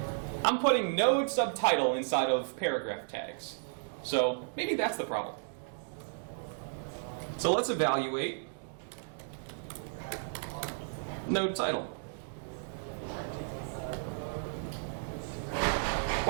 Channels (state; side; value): silent; left; digital silence